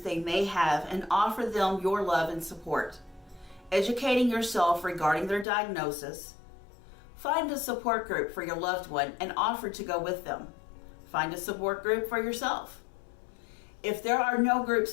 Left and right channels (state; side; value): drops out; right; at 5.5 s